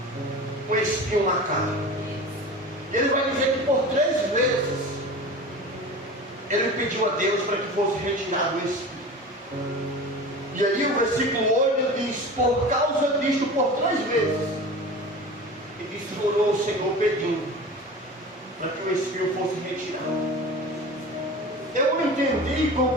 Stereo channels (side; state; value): both; normal; correlation 0.34